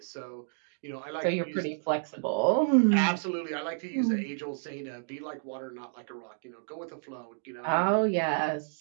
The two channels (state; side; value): silent; left; digital silence